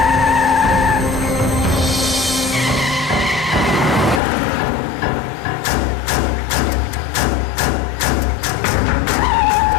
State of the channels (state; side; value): drops out; right; at 4.2 s